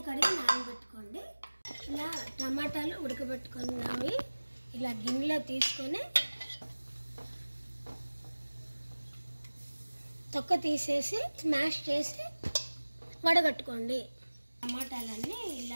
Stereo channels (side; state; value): both; inverted; correlation -1.00